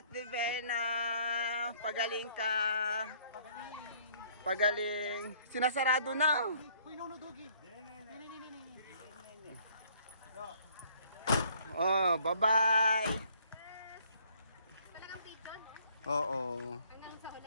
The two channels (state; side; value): inverted; both; correlation -0.61